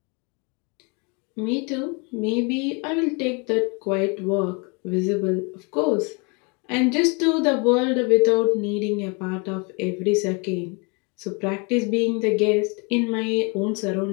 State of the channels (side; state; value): right; quieter; 31.7 dB